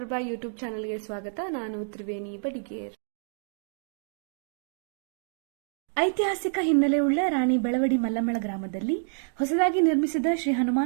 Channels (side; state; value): left; silent; digital silence